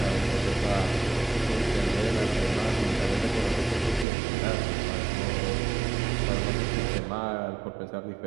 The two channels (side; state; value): left; drops out; at 4.0 s